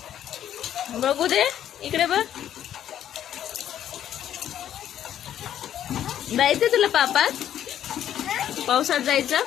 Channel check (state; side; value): quieter; right; 10.7 dB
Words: बघू दे, इकडे बघ. जायचं तुला पापात? पावसात जायचं